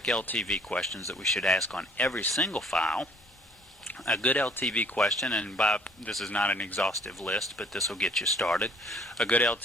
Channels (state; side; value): normal; both; correlation 0.57